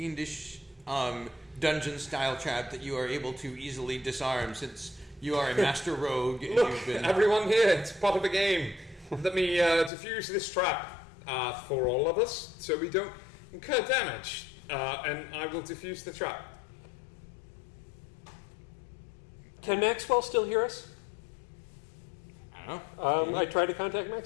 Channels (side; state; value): right; drops out; at 9.9 s